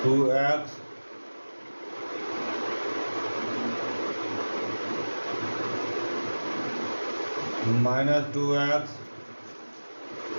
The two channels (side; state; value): both; inverted; correlation -1.00